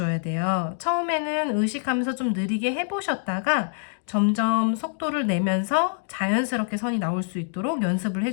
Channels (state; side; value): silent; right; digital silence